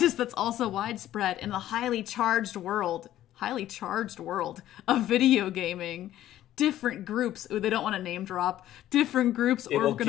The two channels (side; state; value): right; quieter; 13.0 dB